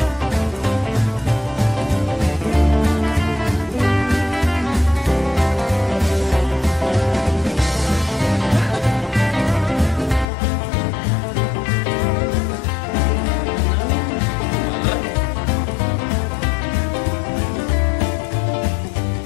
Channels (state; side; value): drops out; right; at 10.2 s